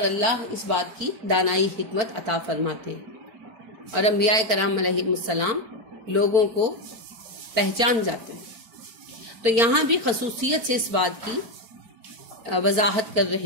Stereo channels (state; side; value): late; left; 4.4 ms